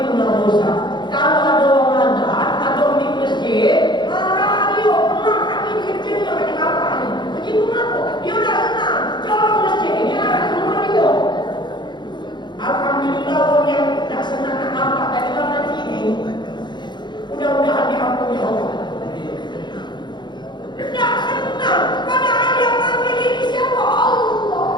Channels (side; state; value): right; late; 0.22 ms